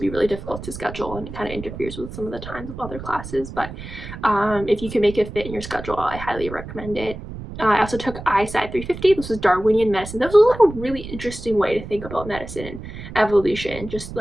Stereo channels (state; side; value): noise; right; rumble, 11 dB below the sound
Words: really difficult to schedule, and it kind of interferes with some of the times of other classes. But if you can make it fit in your schedule, I highly recommend it. I also took ISci 350. This was Darwinian medicine. This was like a really interesting way to think about medicine and evolution. Just